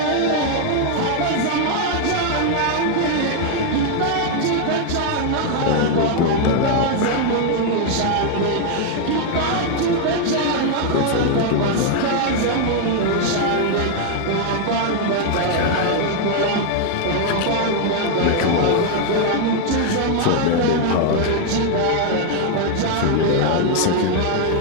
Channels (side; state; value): both; different; correlation 0.00